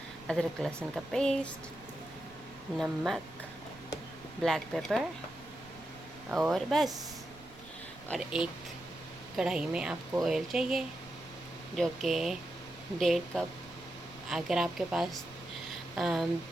अदरक लहसुन का पेस्ट, नमक, ब्लैक पेपर और बस। और एक कढ़ाई में आपको ऑयल चाहिए जो कि 1.5 कप। अगर आपके पास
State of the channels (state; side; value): noise; right; rumble, 21 dB below the sound